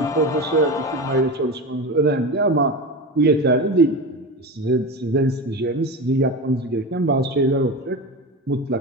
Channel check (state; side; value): normal; both; correlation 0.24